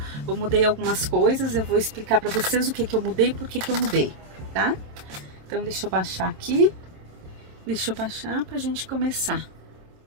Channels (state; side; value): late; left; 27 ms